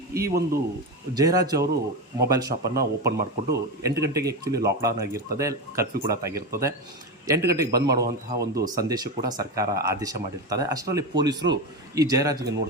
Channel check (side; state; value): both; normal; correlation 0.18